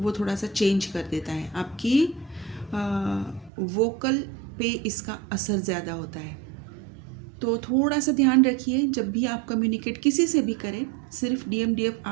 थोड़ा सा चेंज कर देता है। आपकी वोकल पे इसका असर ज़्यादा होता है। तो थोड़ा सा ध्यान रखिए जब भी आप कम्युनिकेट किसी से भी करें। सिर्फ डीएम डीएफ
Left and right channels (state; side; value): drops out; left; at 3.5 s